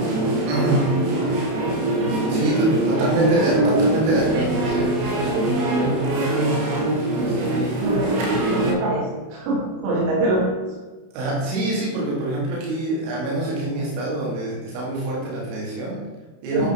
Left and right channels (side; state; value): left; late; 31 ms